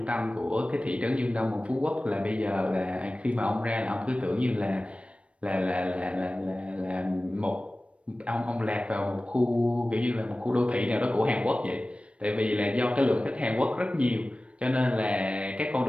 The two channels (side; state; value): left; late; 0.061 ms